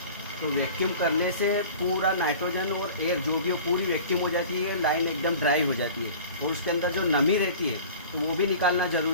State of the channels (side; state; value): both; inverted; correlation -0.42